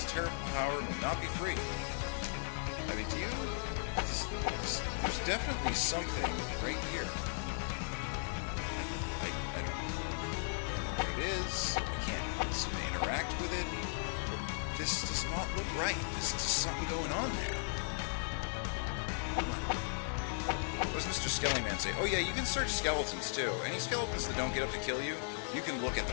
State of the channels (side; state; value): right; silent; digital silence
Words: terrible power may not be free. Do you... there's definitely something right here. I don't know what it is. I can't seem to interact with it. But this does not look right. There's just something going on there. Come on. What does Mr. Skellyman say? Oh yeah, you can search skeletons too. Any skeletons that don't get up to kill you, you can look at